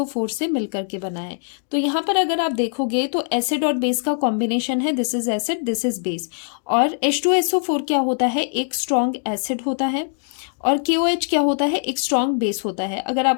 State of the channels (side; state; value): right; silent; 62 dB below the other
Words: से मिलकर के बना है। तो यहाँ पर अगर आप देखोगे तो एसिड और बेस का कॉम्बिनेशन है, this is acid, this is base. और H2SO4 क्या होता है? एक स्ट्रॉन्ग एसिड होता है, और KOH क्या होता है? एक स्ट्रॉन्ग बेस होता है। अगर